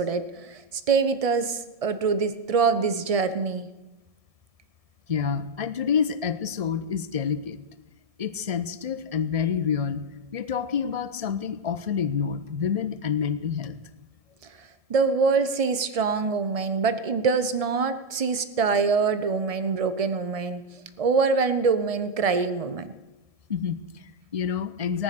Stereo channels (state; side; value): late; left; 1.7 ms